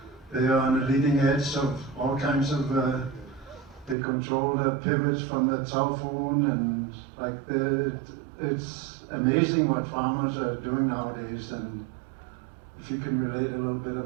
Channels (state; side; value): drops out; left; at 4.0 s